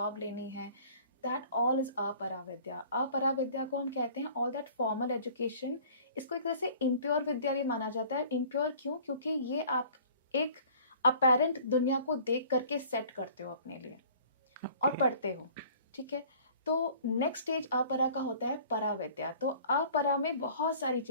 लेनी है, दैट ऑल इज अपरा विद्या। अपरा विद्या को हम कहते हैं ऑल दैट फॉर्मल एजुकेशन। इसको एक तरह से इम्प्योर विद्या भी माना जाता है। इम्प्योर क्यों? क्योंकि ये आप एक अपेरेंट दुनिया को देख करके सेट करते हो अपने लिए और Okay. पढ़ते हो, ठीक है। तो नेक्स्ट स्टेज अपरा का होता है परा विद्या। तो अपरा में बहुत सारी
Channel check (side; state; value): both; inverted; correlation -0.50